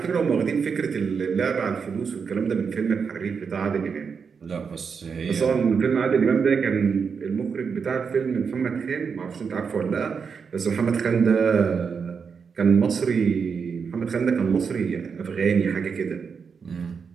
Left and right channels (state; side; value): quieter; left; 6.0 dB